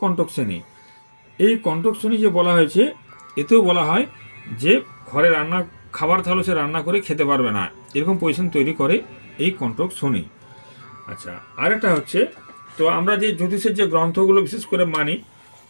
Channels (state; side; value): inverted; both; correlation -1.00